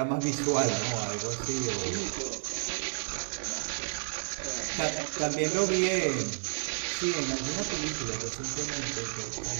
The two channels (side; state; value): left; silent; 57 dB below the other